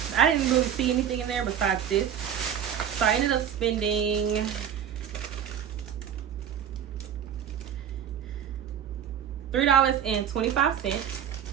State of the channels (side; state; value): left; quieter; 9.0 dB